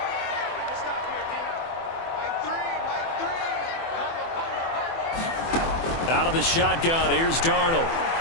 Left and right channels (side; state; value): right; late; 24 ms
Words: Out of the shotgun, here's Darnold.